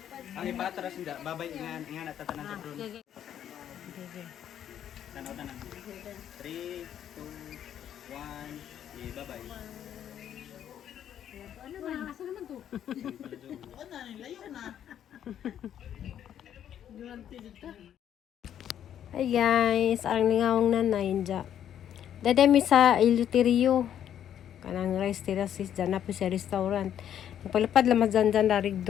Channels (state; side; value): quieter; right; 10.0 dB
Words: Ang ipatras hindi. Babay nga natatanan sa drone. Okay. Okay. Tanaw tanan. 3, 2, 1. Bye-bye. Ano ba? Asa naman to? Oo na, nilayo na. Duwante dito. Hi guys, ang lingawang nanay dya. Dadami sa Iluterio. Kanang rice terraces dyan na po sa restaurant. Nagpalapad lamang dyan darig